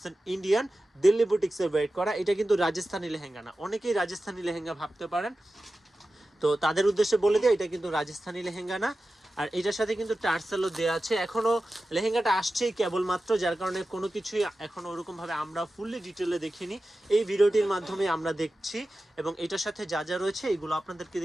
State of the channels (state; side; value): normal; both; correlation 0.94